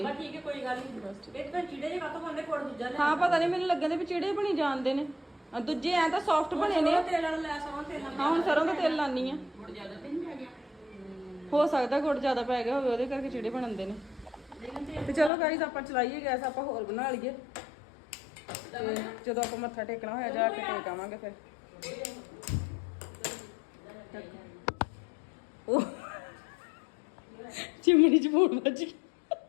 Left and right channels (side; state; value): right; drops out; at 15.3 s